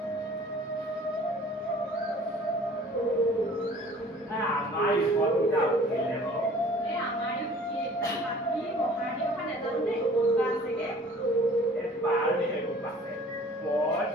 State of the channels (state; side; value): normal; both; correlation 0.50